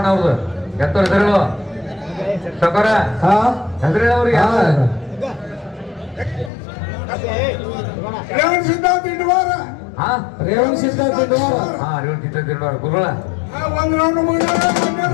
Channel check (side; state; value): right; drops out; at 6.5 s